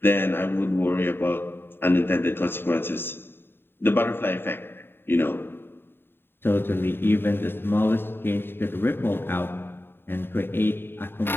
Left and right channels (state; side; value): late; right; 0.11 ms